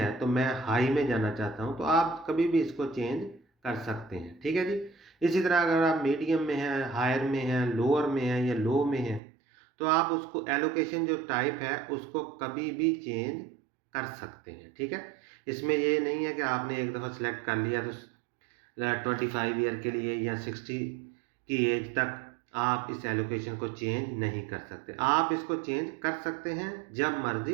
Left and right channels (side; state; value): left; drops out; at 9.2 s